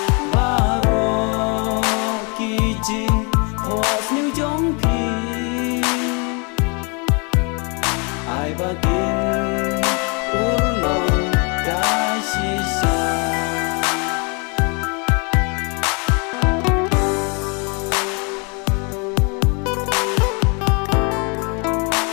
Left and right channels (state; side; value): quieter; right; 33.5 dB